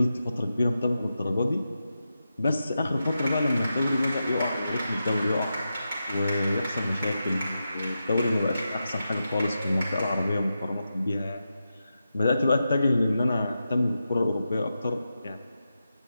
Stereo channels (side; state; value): both; inverted; correlation -0.89